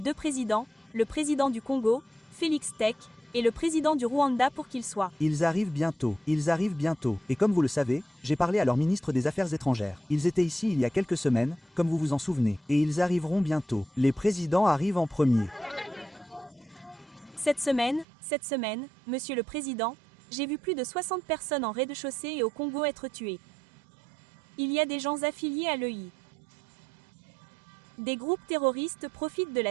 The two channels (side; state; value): left; drops out; at 18.1 s